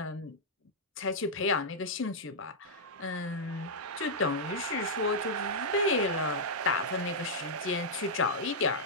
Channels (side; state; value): both; normal; correlation -0.08